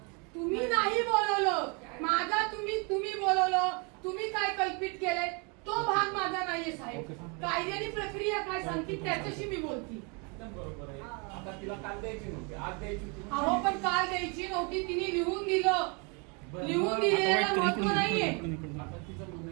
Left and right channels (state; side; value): quieter; left; 33.0 dB